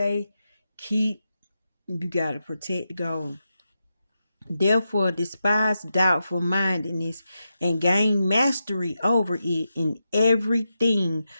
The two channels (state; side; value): inverted; both; correlation -0.88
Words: You got to protect the goal. Therefore, despise doubtful mindedness and gain mastery over it in everything,